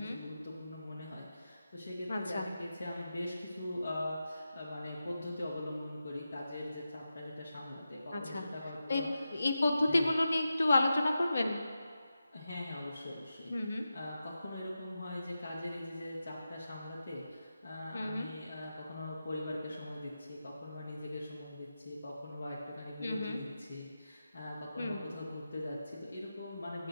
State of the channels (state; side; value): inverted; both; correlation -0.91